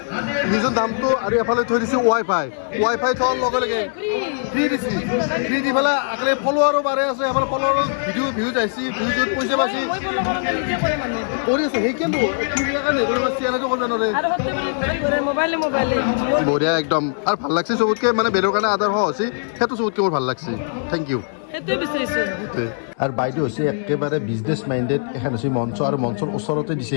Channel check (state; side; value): silent; right; 58 dB below the other